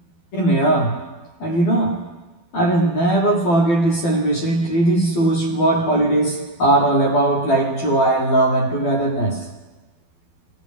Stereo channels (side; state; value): right; late; 12 ms